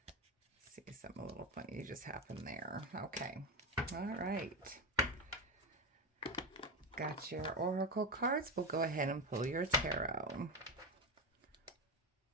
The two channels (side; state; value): both; normal; correlation 0.16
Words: Let's see, something a little funny just happened there. Okay, all right. Got your oracle cards. We'll go ahead and pull your tarot.